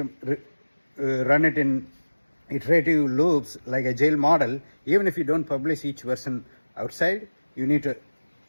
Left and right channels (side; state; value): both; inverted; correlation -1.00